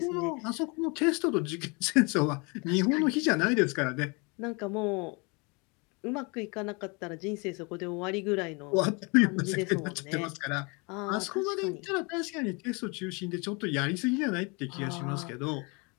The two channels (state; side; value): quieter; right; 30.4 dB